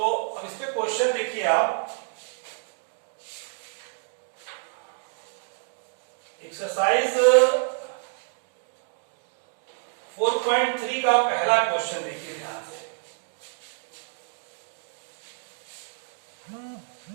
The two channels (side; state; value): left; silent; 59 dB below the other